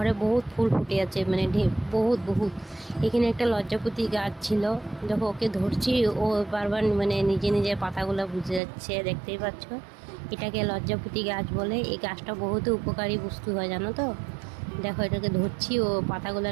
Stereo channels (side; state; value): left; drops out; at 8.6 s